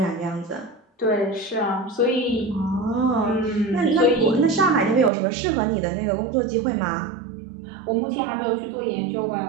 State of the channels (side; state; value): left; drops out; at 5.1 s